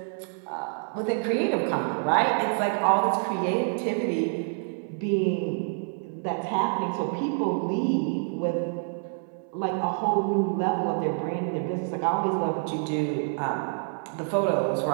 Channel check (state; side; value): silent; left; 60 dB below the other